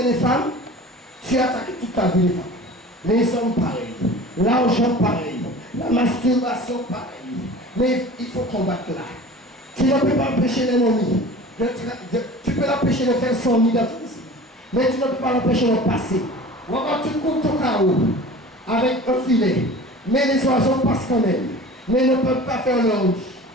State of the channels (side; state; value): both; normal; correlation 0.40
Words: femmes, tu attaques toute ta vie les femmes. Les hommes pareils. L'argent pareil. La masturbation pareil. Mais il faut combattre là. Tu ne peux pas empêcher l'ennemi. Tu peux l'empêcher de faire son nid dans ton esprit. Mais tu ne peux pas l'empêcher de passer. Regarde, tu coupes ton carreau avec un filet. Mais les oiseaux passent quand même. Mais ils ne peuvent pas faire leur nid.